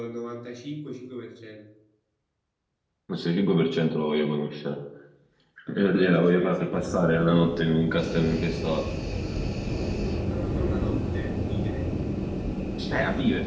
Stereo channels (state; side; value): identical; both; correlation 1.00